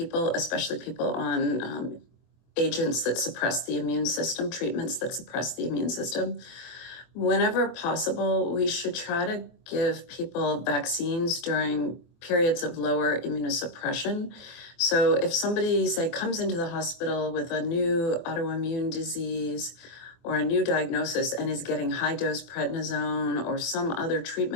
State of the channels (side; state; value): right; late; 23 ms